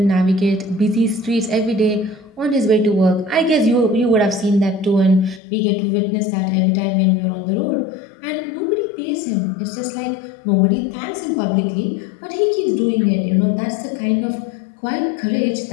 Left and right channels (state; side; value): drops out; right; at 5.4 s